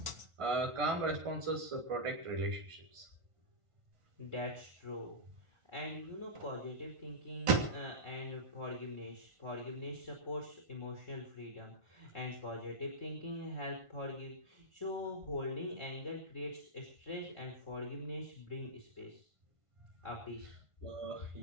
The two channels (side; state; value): left; late; 1.5 ms